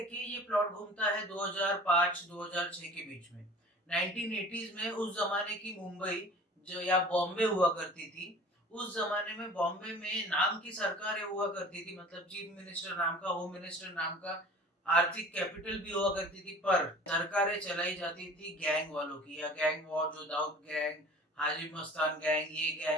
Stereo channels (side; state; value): both; normal; correlation 0.44